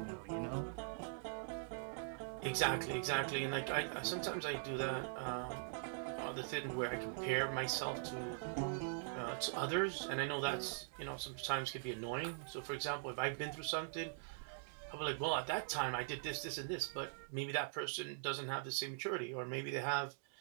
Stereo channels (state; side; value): silent; left; digital silence